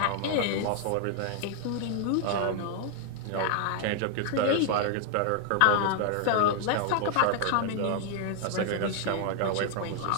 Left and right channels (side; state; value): both; different; correlation 0.00